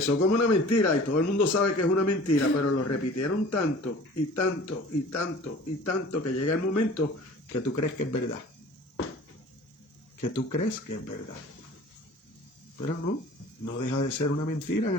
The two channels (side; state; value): both; normal; correlation 0.45